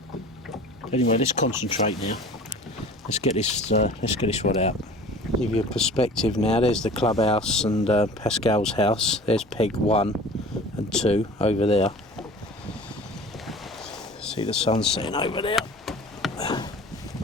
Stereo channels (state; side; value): normal; both; correlation 0.42